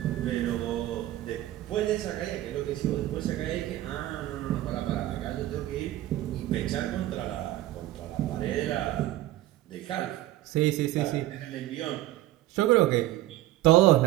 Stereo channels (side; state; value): left; quieter; 15.1 dB